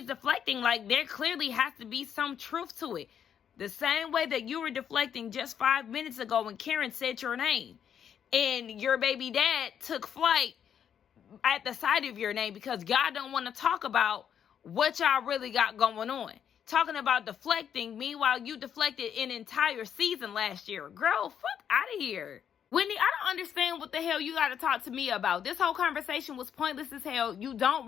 deflecting like there clearly has to be some truth to it. The same way that you were deflecting just 5 minutes ago when Karen said your name. And your baby dad took flight at the sight of your name because y'all don't want to talk about what y'all really got going on. Talking about deflecting, meanwhile, you deflected an entire season last year. Girl, fuck out of here. Wendy, I don't understand what the hell you got to talk to me about. This whole conversation was pointless as hell. You don't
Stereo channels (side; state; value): right; quieter; 8.6 dB